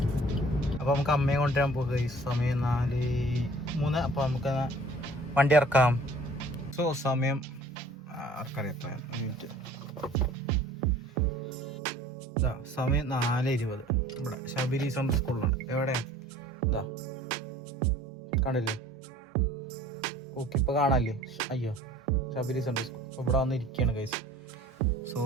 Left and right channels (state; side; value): normal; both; correlation 0.51